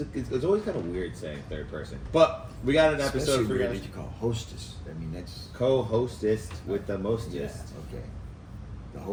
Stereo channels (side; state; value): both; identical; correlation 1.00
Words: always kind of weird saying third person, but we got an episode Especially for you weird guys. that you call hostess. I mean, that's... Co-hostess with the mostest. Yeah, okay. The